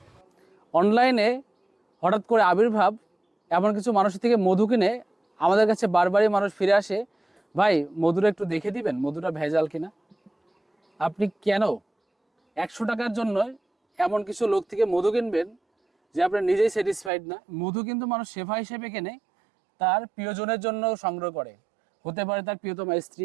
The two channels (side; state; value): left; drops out; at 17.1 s